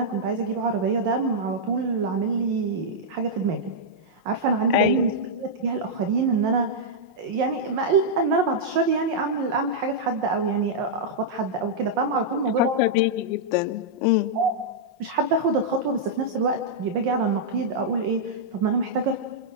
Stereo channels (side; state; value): left; late; 5.6 ms